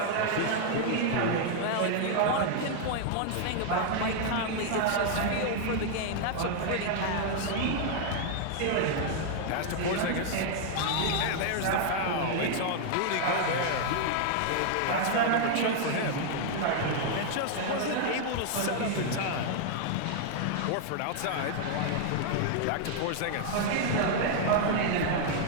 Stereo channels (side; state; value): both; different; correlation 0.00